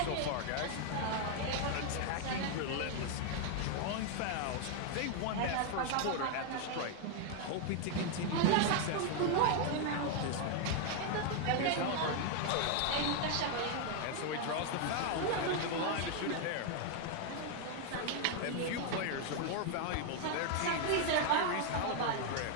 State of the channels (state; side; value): different; both; correlation 0.00